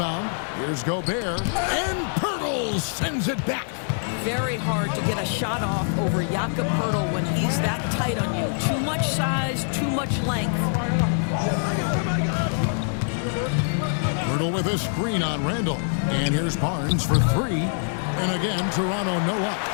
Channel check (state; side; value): silent; right; digital silence